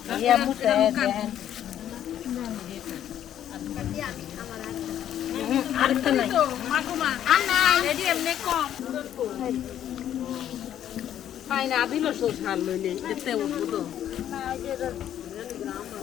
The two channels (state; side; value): quieter; right; 10.7 dB